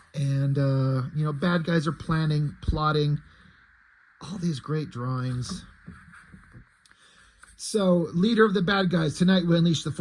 You know, bad guys are planning, plotting, all these great drawings. So, leader of the bad guys, tonight we unleash the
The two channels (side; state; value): both; identical; correlation 1.00